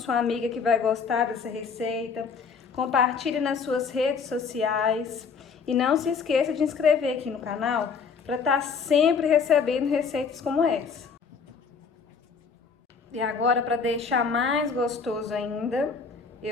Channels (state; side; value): quieter; right; 5.6 dB